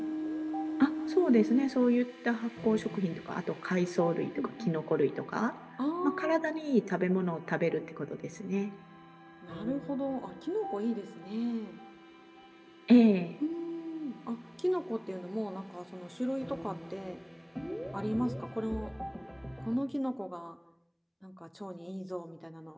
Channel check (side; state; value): both; identical; correlation 1.00